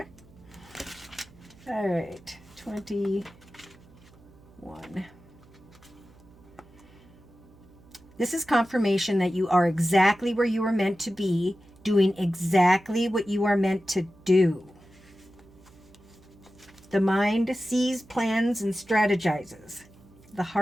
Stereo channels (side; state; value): right; noise; hum, 26 dB below the sound